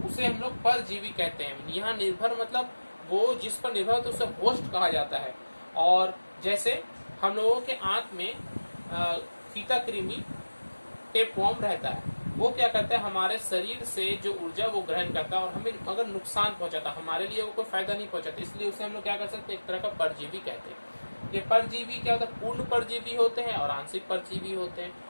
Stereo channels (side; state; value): both; inverted; correlation -1.00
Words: उसे हम लोग परजीवी कहते हैं। यहाँ निर्भर मतलब वो जिस पर निर्भर होता है उसे होस्ट कहा जाता है। और जैसे हम लोगों के आंत में फीता कृमि, टेपवर्म रहता है, वो क्या करता है? हमारे शरीर से जो ऊर्जा वो ग्रहण करता है और हमें अगर नुकसान पहुंचाता, हमारे लिए वो कोई फायदा नहीं पहुंचाता, इसलिए उसे हम लोग क्या कर सकते हैं? एक तरह का परजीवी कहते हैं। ये परजीवी क्या होता है? पूर्ण परजीवी होते हैं और आंशिक परजीवी होते हैं।